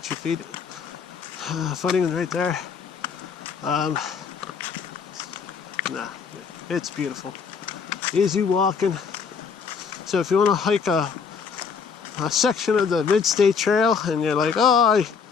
your feet. Footing right there. Nah, it's beautiful. Easy walking. So if you want to hike a section of the Mid-State Trail and you're like, oh,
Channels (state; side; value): quieter; right; 6.0 dB